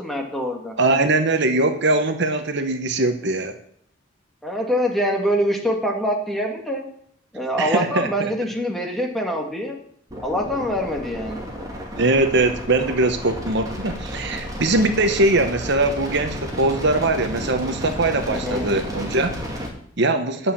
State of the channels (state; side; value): normal; both; correlation 0.10